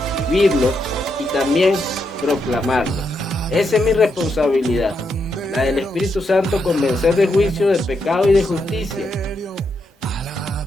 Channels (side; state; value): both; normal; correlation 0.81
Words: vivirlo y también proclamarlo. Esa es mi responsabilidad. La del Espíritu Santo, convencer de juicio, de pecado y de justicia.